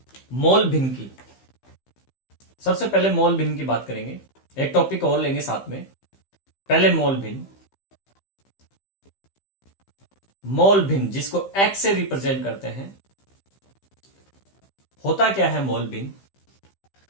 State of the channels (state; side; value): late; right; 15 ms